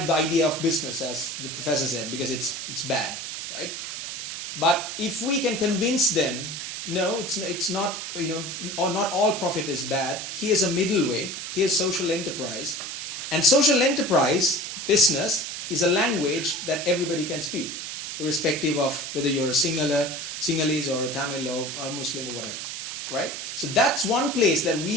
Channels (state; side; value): noise; right; hiss, 6 dB below the sound